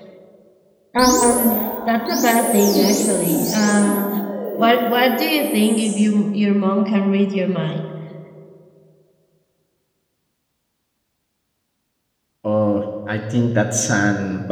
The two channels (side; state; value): both; identical; correlation 1.00